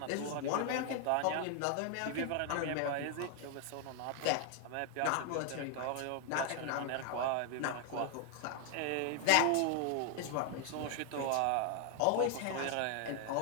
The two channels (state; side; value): different; both; correlation 0.00